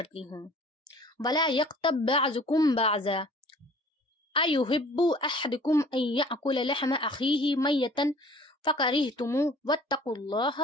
हूँ, वला यक़्तब बअज़ुकुम बअज़ा अयुहिब्बु अहदुकुम अन यअकुल लहम अखीही मय्यतन फ़करिहतुमू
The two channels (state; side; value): normal; both; correlation 0.50